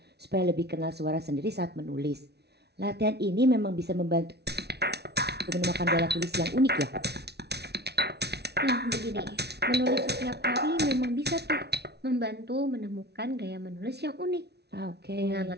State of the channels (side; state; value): left; late; 0.49 ms